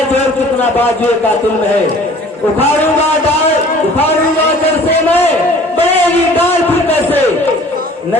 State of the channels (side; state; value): both; normal; correlation 0.50